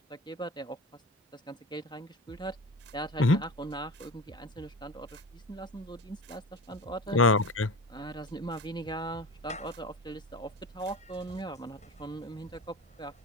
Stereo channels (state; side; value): normal; both; correlation 0.31